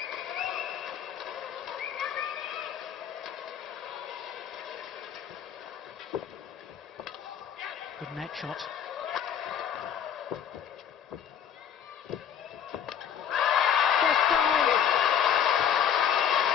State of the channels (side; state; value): right; quieter; 8.6 dB